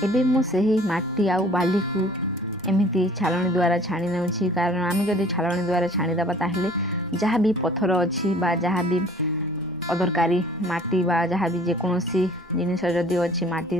एबे मु सही माटी आउ बाली को एमिति छालनी द्वारा छाणी नेउछि, कारण आम जदि छालनी द्वारा छाणीदेबा ताहले जहाँ भी पत्थर अच्छी बा जहाँ भी अदरकारी माटी बा जहाँ भी जेकोसी जिनिस जदि अच्छी माटी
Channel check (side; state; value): both; normal; correlation 0.51